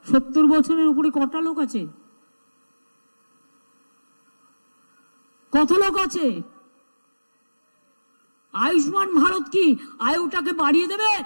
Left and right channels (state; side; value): inverted; both; correlation -1.00